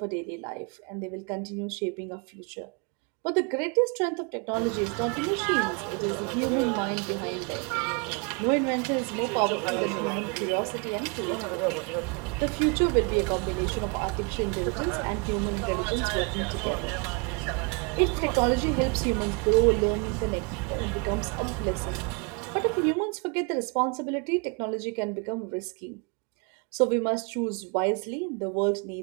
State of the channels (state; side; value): quieter; left; 33.3 dB